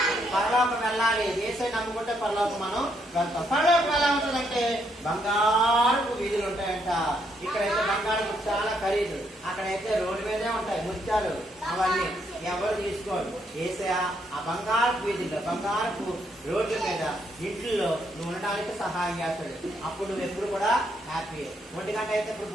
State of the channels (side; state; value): both; normal; correlation 0.74